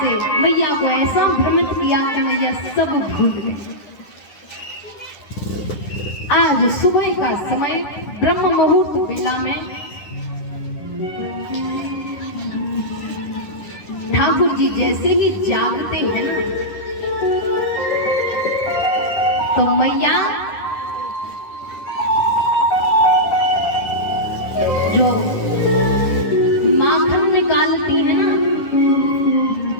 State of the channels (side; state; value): right; late; 10 ms